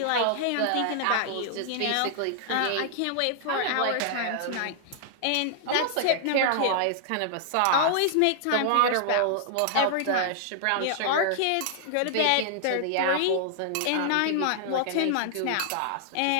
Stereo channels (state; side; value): different; both; correlation -0.01